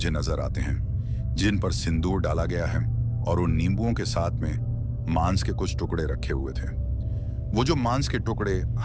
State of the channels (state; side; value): identical; both; correlation 1.00